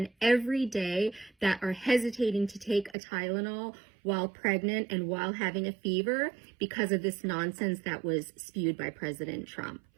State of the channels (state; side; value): drops out; left; at 3.0 s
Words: every day that are hesitating to take a Tylenol while pregnant and while having a fever because of this nonsense that was spewed by President Trump.